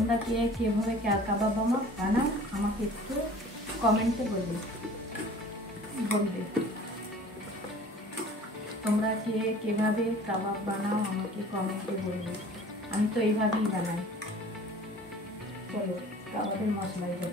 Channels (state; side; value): normal; both; correlation 0.46